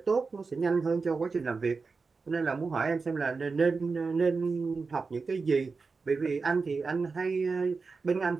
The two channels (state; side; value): quieter; left; 4.5 dB